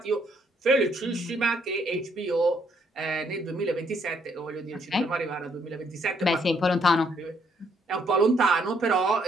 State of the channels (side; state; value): both; normal; correlation 0.70